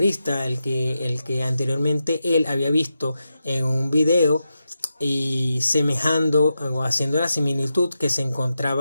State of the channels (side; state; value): both; inverted; correlation -0.88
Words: el que anteriormente él había visto en un video y semejando o haciendo la similitud, que se